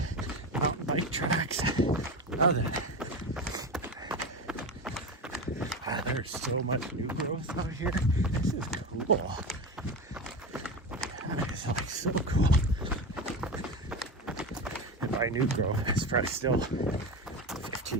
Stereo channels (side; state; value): both; normal; correlation 0.22